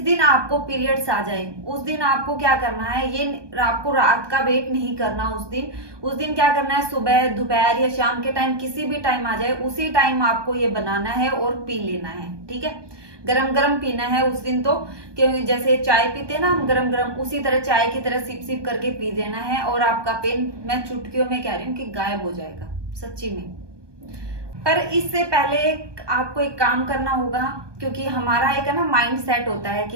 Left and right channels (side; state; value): left; late; 1.2 ms